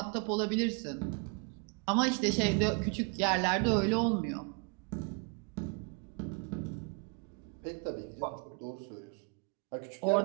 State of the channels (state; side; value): quieter; left; 32.4 dB